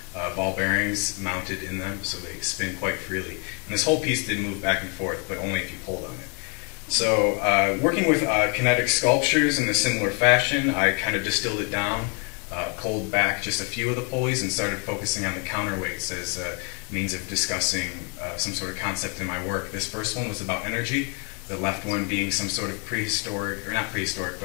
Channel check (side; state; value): right; quieter; 36.3 dB